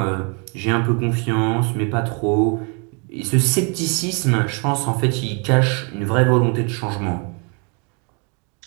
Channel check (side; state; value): left; quieter; 35.3 dB